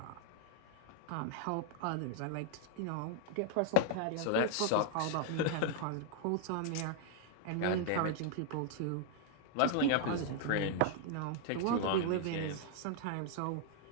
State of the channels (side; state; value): both; different; correlation 0.00